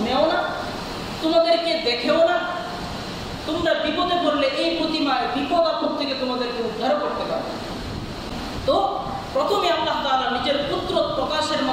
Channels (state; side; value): identical; both; correlation 1.00